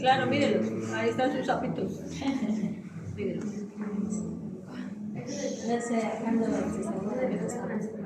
mírenlos, ahí están sus sapitos. Mírenlos.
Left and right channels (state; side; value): identical; both; correlation 1.00